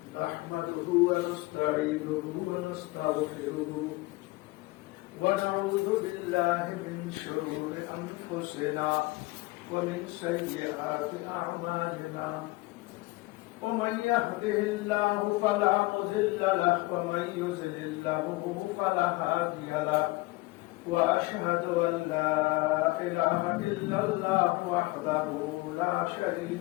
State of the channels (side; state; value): right; quieter; 22.1 dB